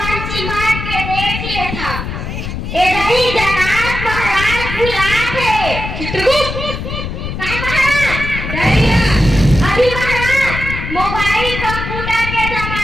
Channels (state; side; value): noise; left; rumble, 6 dB below the sound